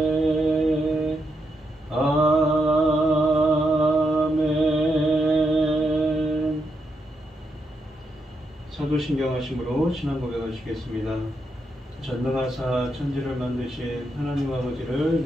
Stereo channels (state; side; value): normal; both; correlation 0.82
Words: 아멘. 사도신경 하심으로 신앙 고백하시겠습니다. 전능하사 천지를 만드신 하나님 아버지를